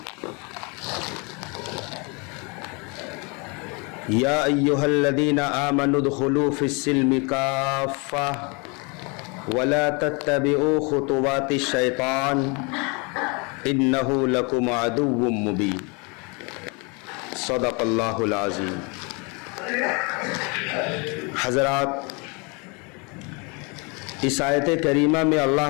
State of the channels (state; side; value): quieter; right; 31.3 dB